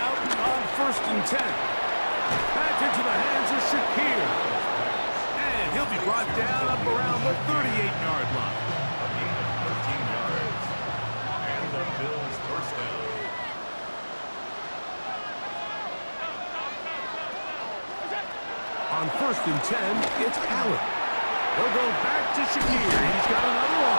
on 1st and 10. Back into the hands of Shakir. And he'll be brought down up around the 38-yard line. A gain of 13 yards. And the Bills first down. On 1st and 10, it's Allen. They'll go back to Shakir. He's got another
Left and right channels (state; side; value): inverted; both; correlation -1.00